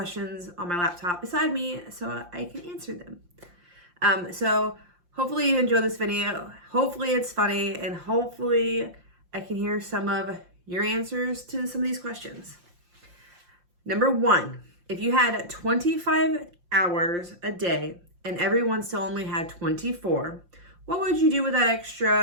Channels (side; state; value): left; late; 5.7 ms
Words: on my laptop beside me so I can answer them. So hopefully you enjoy this video. Hopefully it's funny, and hopefully I can hear some of your answers to some of these questions. Number one, if you had 25 hours a day and everyone still only had 24, what would you do with that